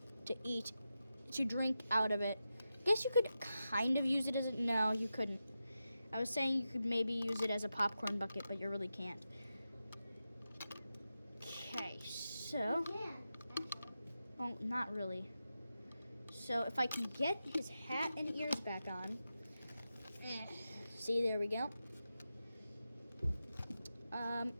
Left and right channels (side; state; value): both; inverted; correlation -0.90